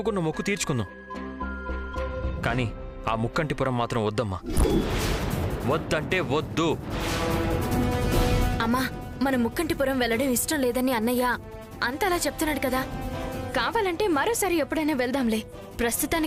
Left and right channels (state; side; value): identical; both; correlation 1.00